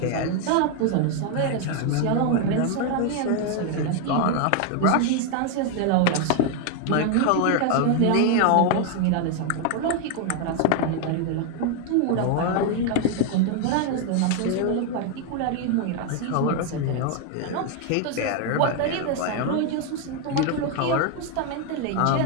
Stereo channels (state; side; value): different; both; correlation 0.01